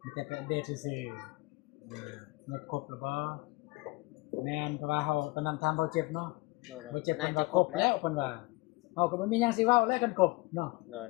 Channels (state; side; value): quieter; right; 22.8 dB